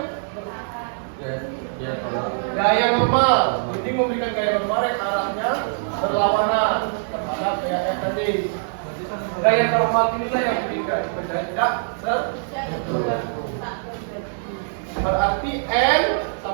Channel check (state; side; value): silent; left; digital silence